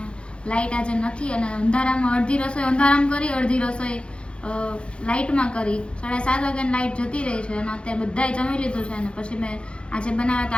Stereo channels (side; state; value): right; late; 0.057 ms